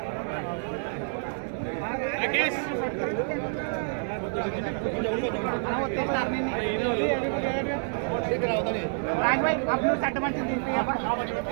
राकेश राज भाई आप लोग सट मंच दीजिए यहां पर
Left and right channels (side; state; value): left; silent; digital silence